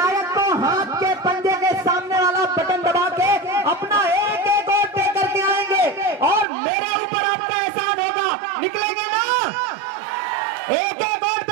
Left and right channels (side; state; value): left; drops out; at 6.5 s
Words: को हाथ के पंजे के सामने वाला बटन दबा के अपना एक एक वोट दे करके आएंगे और मेरे ऊपर आपका एहसान होगा। निकलेंगे ना? एक एक वोट